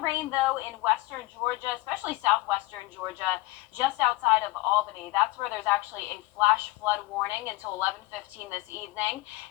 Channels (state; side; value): quieter; right; 19.8 dB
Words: rain, though, in western Georgia, especially southwestern Georgia, just outside of Albany. That's where there's actually a flash flood warning until 11:15 this evening.